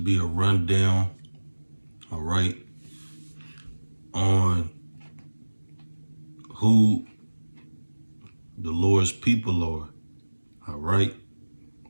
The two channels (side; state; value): both; inverted; correlation -1.00